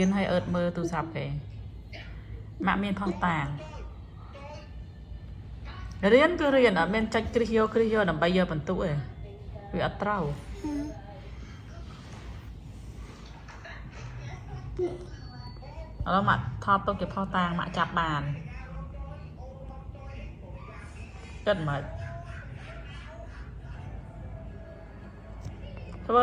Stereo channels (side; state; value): both; identical; correlation 1.00